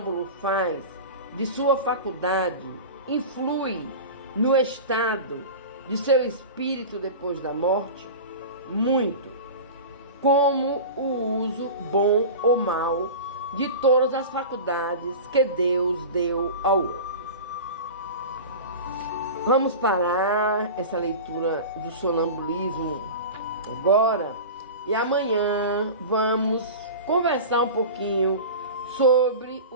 faz de sua faculdade influi no estado de seu espírito depois da morte? Muito. Como o uso bom ou mau de todas as faculdades que Deus deu ao homem. Vamos parar essa leitura do sonambulismo agora e amanhã vamos conversar um pouquinho sobre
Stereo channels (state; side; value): inverted; both; correlation -0.31